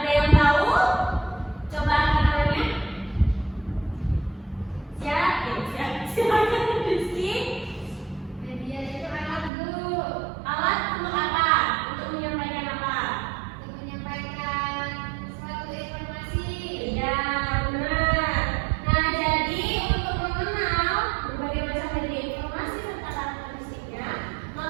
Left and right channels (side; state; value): left; drops out; at 9.5 s